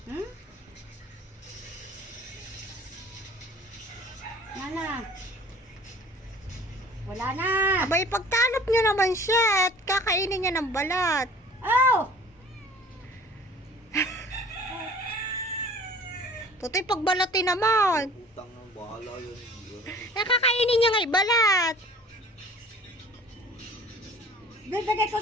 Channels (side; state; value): both; normal; correlation 0.48